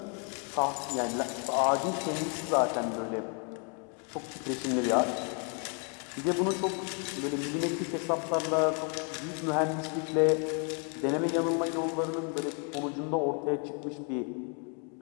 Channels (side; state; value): right; quieter; 39.2 dB